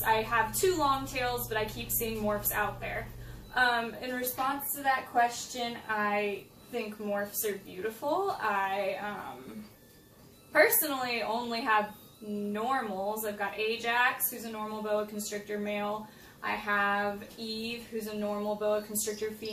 I have two long tails, but I keep seeing morphs out there. In response to that question, I think morphs are beautiful. I personally only have normals. I've got Ajax, who's a normal boa constrictor male. I have Eve, who's a normal boa constrictor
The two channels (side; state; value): both; identical; correlation 1.00